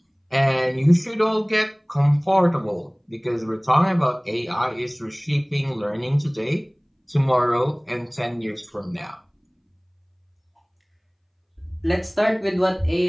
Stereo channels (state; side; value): identical; both; correlation 1.00